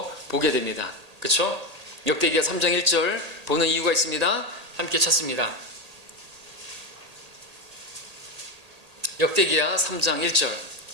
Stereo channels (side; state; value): left; late; 1.8 ms